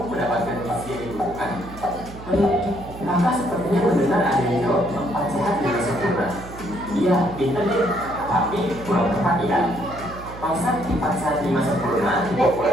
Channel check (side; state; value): right; noise; hum, 14 dB below the sound